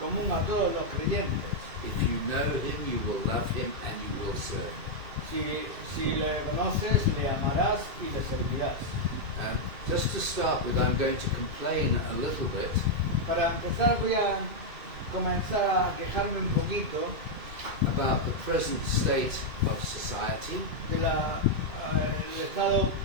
a todos los creyentes. If you know Him, you will love Him and you will serve Him. Si le conoces, le amarás y le servirás. Just to start with, I'm going to complain a little bit Para empezar voy a comenzar a quejarme un poquito about the present state of society, del estado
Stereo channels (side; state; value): left; late; 2.5 ms